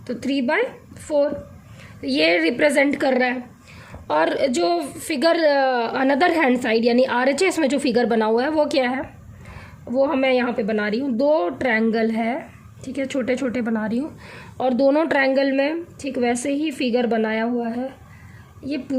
तो 3/4 ये रिप्रेजेंट कर रहा है। और जो फिगर अनदर हैंड साइड यानी RHS में जो फिगर बना हुआ है वो क्या है, वो मैं यहाँ पे बना रही हूँ। 2 ट्रायंगल है, ठीक है, छोटे छोटे बना रही हूँ, और दोनों ट्रायंगल में ठीक वैसे ही फिगर बनाया हुआ है। ये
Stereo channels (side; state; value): both; identical; correlation 1.00